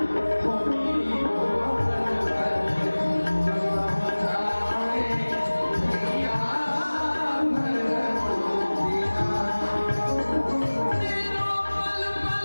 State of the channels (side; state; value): both; inverted; correlation -1.00